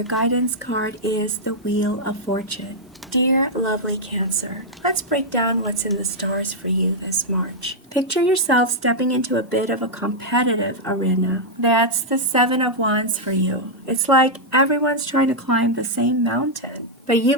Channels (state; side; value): normal; both; correlation -0.05